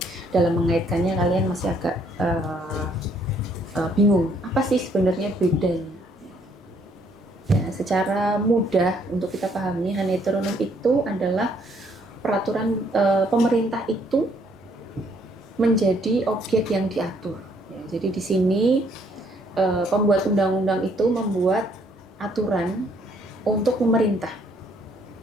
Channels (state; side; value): normal; both; correlation 0.67